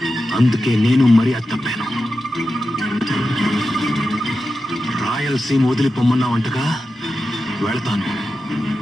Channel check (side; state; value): both; normal; correlation 0.91